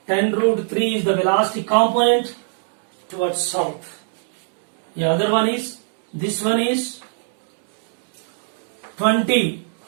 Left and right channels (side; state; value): left; silent; 61 dB below the other